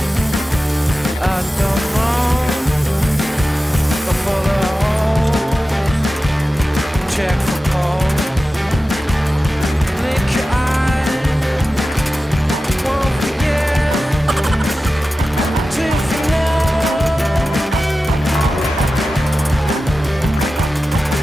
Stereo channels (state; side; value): normal; both; correlation 0.94